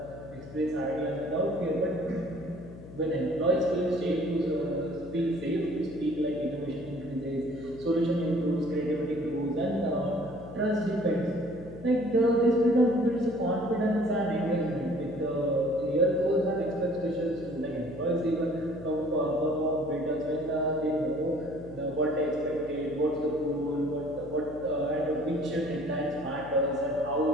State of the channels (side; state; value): left; noise; hum, 15 dB below the sound